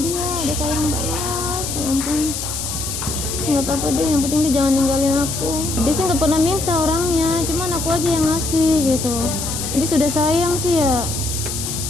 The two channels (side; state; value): left; noise; hiss, 5 dB below the sound